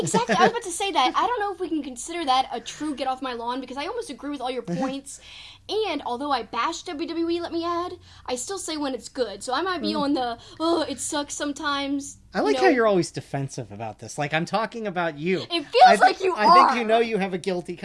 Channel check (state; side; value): identical; both; correlation 1.00